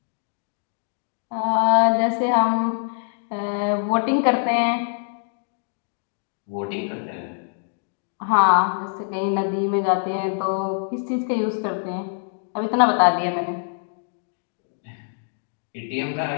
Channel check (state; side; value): silent; right; digital silence